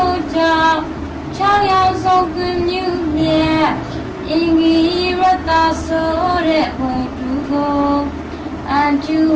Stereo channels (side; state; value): both; identical; correlation 1.00